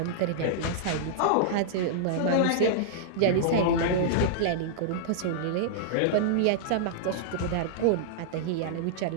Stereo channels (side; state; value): both; different; correlation -0.01